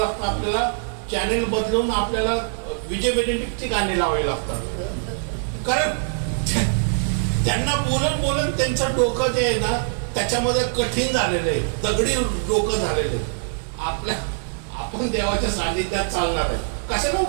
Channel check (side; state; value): left; silent; digital silence